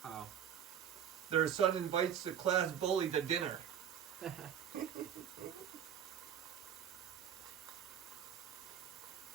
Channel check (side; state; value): left; quieter; 9.1 dB